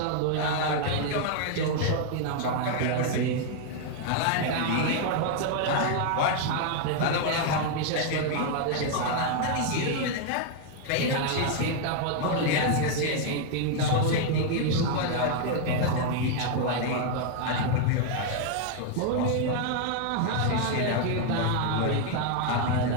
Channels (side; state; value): both; different; correlation 0.00